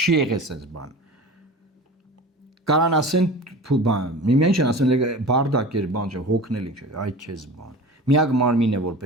եղել sense բան։ Կարան ասեն բան, միմյանց են ասեն բարդակ էր բան, հոգնել ինչ, այ քեզ բան։ Միակ մարմինն է, որ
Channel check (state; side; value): normal; both; correlation 0.36